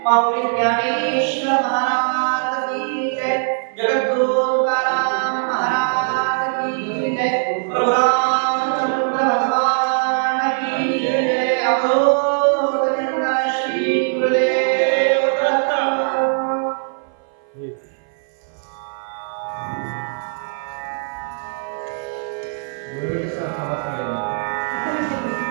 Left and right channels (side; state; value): left; silent; 58 dB below the other